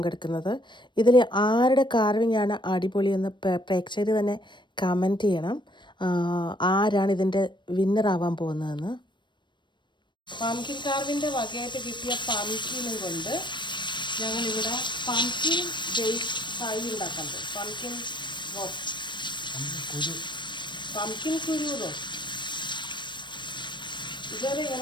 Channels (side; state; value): right; late; 0.22 ms